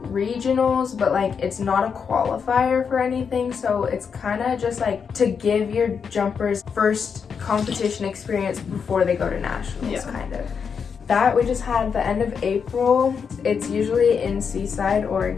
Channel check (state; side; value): quieter; right; 6.4 dB